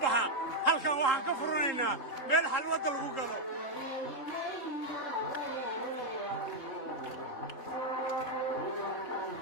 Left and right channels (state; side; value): late; right; 3.8 ms